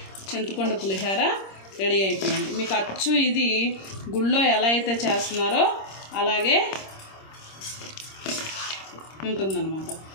చింతపండు పులిహోర రెడీ అయిపోయింది. మీకు అచ్చు ఇది గుళ్ళో ఎలా అయితే చేస్తున్నారో అలాగే ఉంటుందన్నమాట.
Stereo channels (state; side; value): late; right; 26 ms